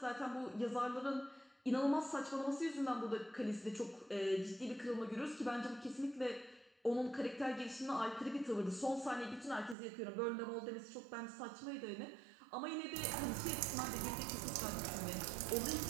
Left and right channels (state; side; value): drops out; left; at 9.8 s